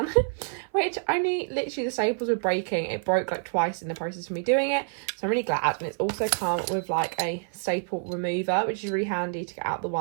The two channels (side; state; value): left; silent; 56 dB below the other